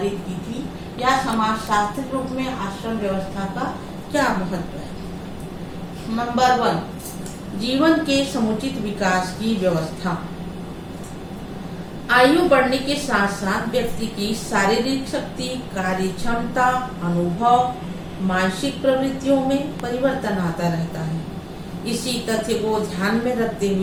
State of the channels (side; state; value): both; identical; correlation 1.00